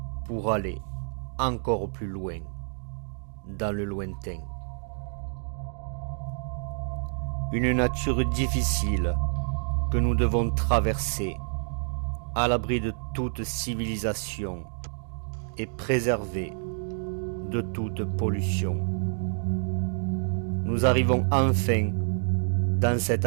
pour aller encore plus loin dans le lointain. Une nature difficile que nous devons traverser à l'abri de toute civilisation et préservée de toute pollution. Nous arrivons enfin dans cet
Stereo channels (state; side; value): silent; left; digital silence